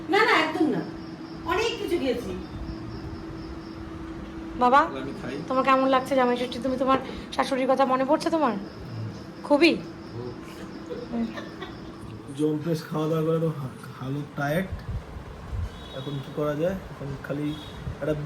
না না একদম না অনেক কিছু খেয়েছি বাবা আমি খাই তোমার কেমন লাগছে জামাই ষষ্ঠী? তুমি তোমার শাশুড়ির কথা মনে পড়ছে তোমার খুবই? জম্পেশ খাওয়া দাওয়া করে তো হালত টায়ার্ড এখন কি করা যায় এখন খালি একটা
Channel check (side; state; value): both; identical; correlation 1.00